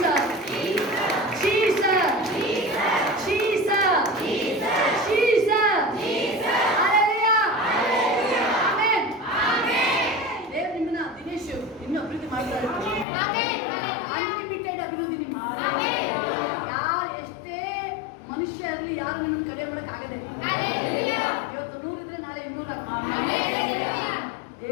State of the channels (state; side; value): drops out; right; at 13.1 s